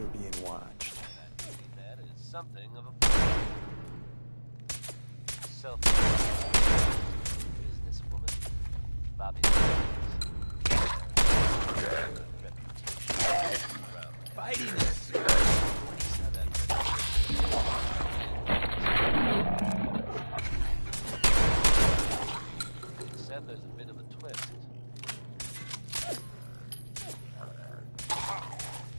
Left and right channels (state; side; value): inverted; both; correlation -1.00